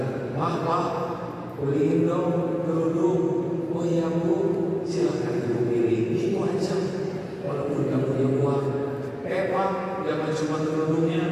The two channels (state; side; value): identical; both; correlation 1.00